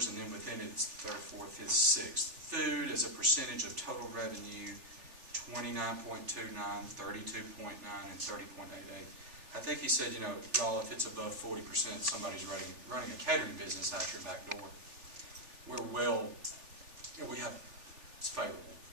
and then within it, it's third, fourth, fifth, sixth. Food as a percentage of total revenue, 29.29, 32.9, and 30.88. I think he said, y'all, if it's above 40%, somebody's running a catering business out your back door. We're well, it's favorable.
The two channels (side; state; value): left; late; 3.4 ms